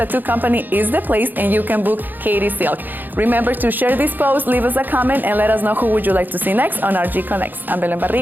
Company is the place and you can book Katie Silk. Remember to share this post, leave us a comment, and let us know who would you like to see next on RG Connects. I'm Belen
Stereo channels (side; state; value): left; late; 0.088 ms